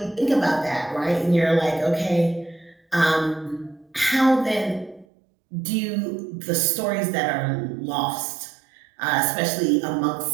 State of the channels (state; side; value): drops out; left; at 5.1 s